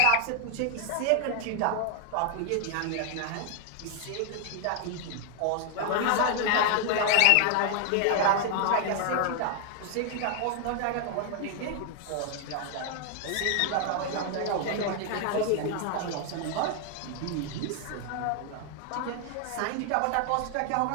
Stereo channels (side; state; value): both; different; correlation 0.00